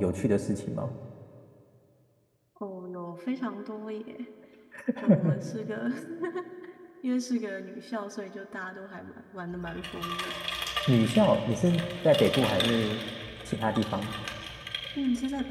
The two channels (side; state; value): both; identical; correlation 1.00